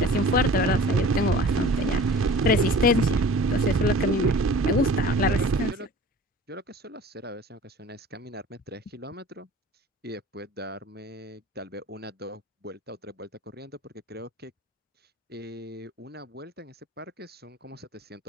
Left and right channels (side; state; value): both; normal; correlation 0.43